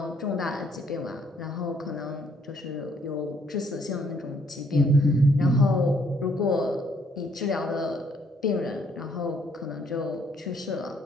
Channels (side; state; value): both; normal; correlation 0.67